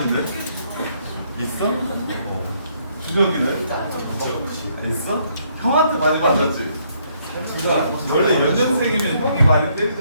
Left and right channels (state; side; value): inverted; both; correlation -0.70